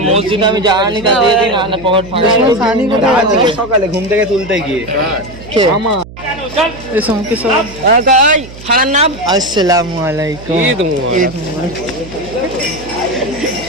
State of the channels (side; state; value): right; noise; hum, 16 dB below the sound